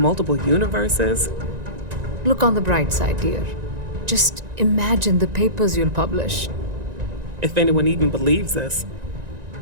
universes. Look on the bright side, dear. Just imagine the papers you'll publish. If anyone even believes us.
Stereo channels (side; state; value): left; late; 1.9 ms